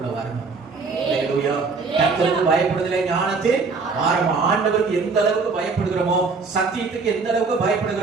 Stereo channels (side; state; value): left; quieter; 4.5 dB